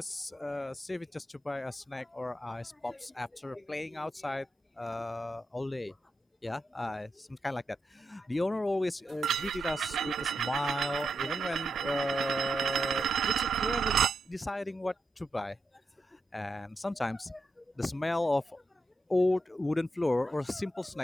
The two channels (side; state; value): both; normal; correlation 0.86